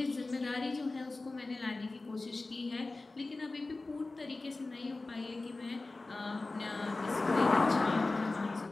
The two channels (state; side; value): quieter; right; 3.3 dB